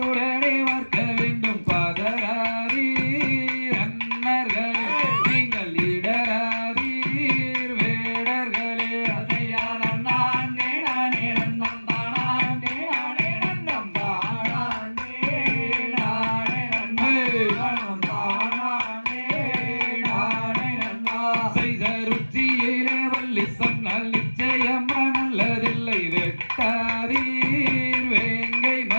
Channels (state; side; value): inverted; both; correlation -1.00